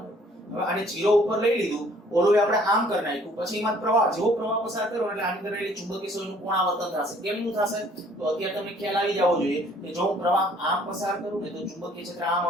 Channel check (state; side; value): normal; both; correlation 0.59